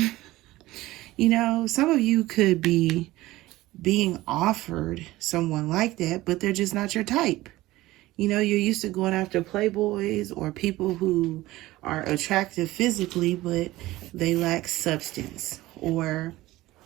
You know, some of you could be being offered someone like that, but they're just not your type. You know, you're used to going after playboys or people who are attractive physically, but they lack substance. Or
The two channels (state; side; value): quieter; left; 17.7 dB